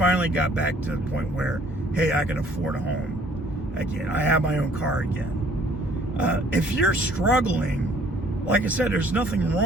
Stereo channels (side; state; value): both; normal; correlation 0.59